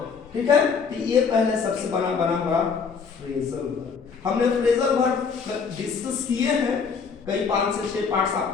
ठीक है, तो ये पहले सबसे बना हमारा फ्रेजल वर्ब। हमने फ्रेजल वर्ब डिस्कस किए हैं, कई 5 से 6 पार्ट्स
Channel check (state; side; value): quieter; right; 5.7 dB